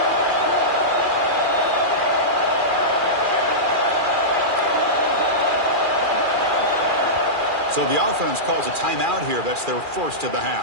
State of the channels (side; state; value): left; late; 2.4 ms